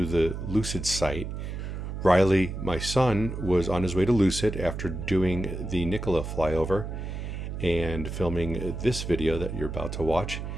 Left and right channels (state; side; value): noise; right; hum, 6 dB below the sound